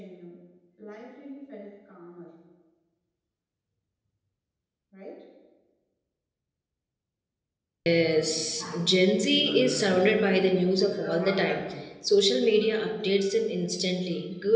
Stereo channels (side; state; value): both; identical; correlation 1.00